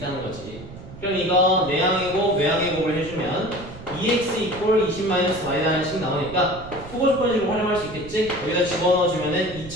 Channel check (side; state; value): right; noise; rumble, 15 dB below the sound